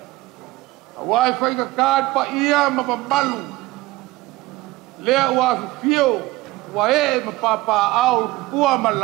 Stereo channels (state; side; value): quieter; left; 19.6 dB